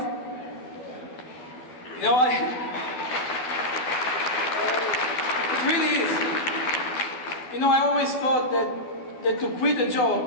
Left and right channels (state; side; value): late; right; 12 ms